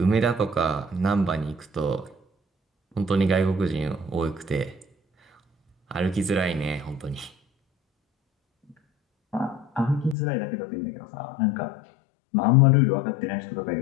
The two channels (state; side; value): drops out; right; at 10.2 s